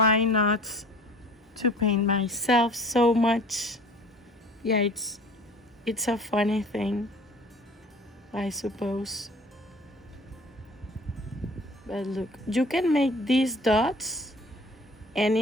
not to paint myself so much. Yeah, it's a funny thing, I suppose. But look, you can make these dots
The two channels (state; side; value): normal; both; correlation 0.47